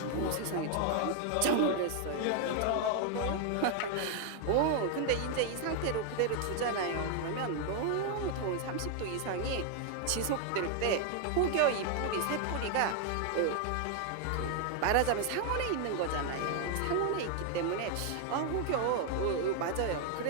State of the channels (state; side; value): different; both; correlation 0.00